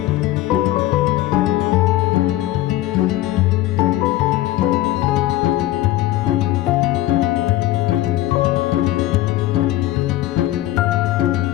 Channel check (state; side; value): quieter; right; 15.4 dB